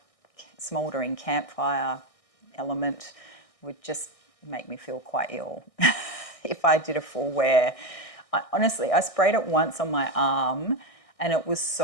smouldering campfire element would just make me feel quite ill if I did a full wear. Honestly, I sprayed it once on my arm, and it was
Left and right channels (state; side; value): late; right; 1.6 ms